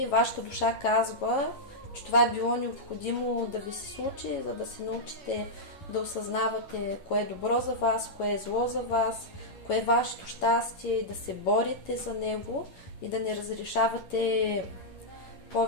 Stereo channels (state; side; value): late; right; 11 ms